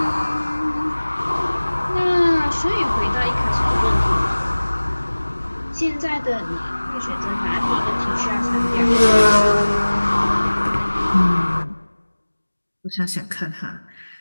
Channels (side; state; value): both; inverted; correlation -1.00